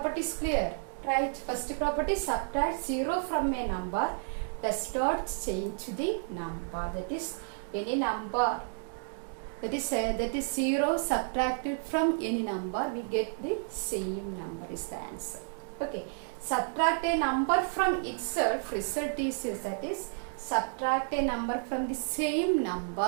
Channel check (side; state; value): left; silent; digital silence